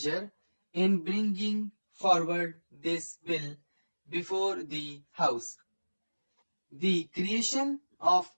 in bringing forward this bill before the House. The creation of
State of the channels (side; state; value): both; inverted; correlation -1.00